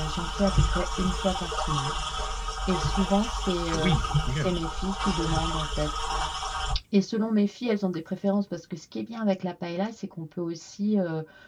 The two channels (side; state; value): both; identical; correlation 1.00